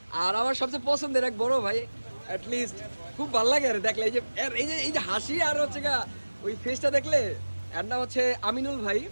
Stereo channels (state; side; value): inverted; both; correlation -1.00